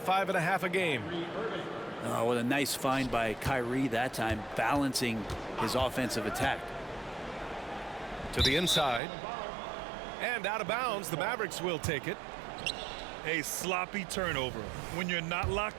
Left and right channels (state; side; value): drops out; left; at 9.0 s